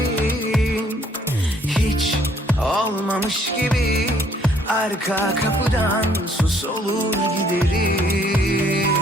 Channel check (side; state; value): both; normal; correlation 0.64